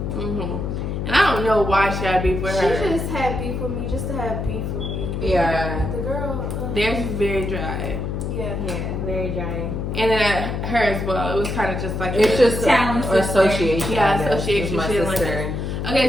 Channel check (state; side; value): noise; left; hum, 3 dB below the sound